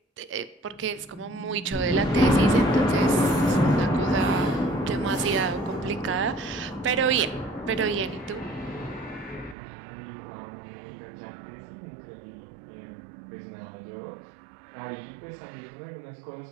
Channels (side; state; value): left; drops out; at 9.6 s